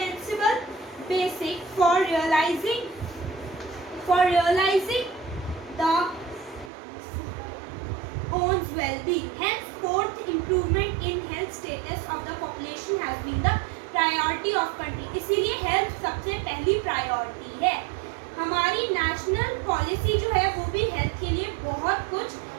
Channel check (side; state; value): left; drops out; at 6.7 s